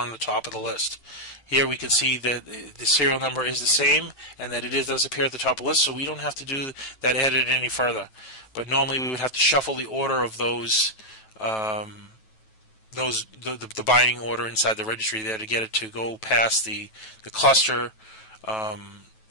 the top of the list. Here we can see that the serial number is the same and that it does appear at the top of the list, so we don't have to do that edit any further. But normally we would have to shuffle the order of those the binding order inside the registry there to get it to go past the cluster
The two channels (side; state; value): right; late; 9.2 ms